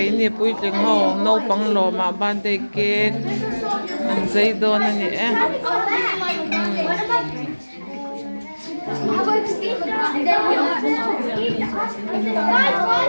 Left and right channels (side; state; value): both; inverted; correlation -1.00